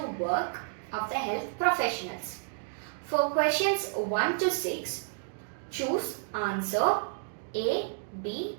work of the health professionals. For questions 1 to 6, choose answer A, B,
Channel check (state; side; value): silent; left; digital silence